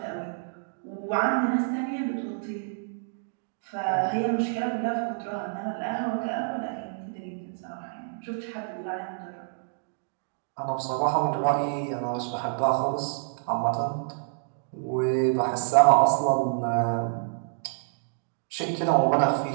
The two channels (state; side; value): silent; left; digital silence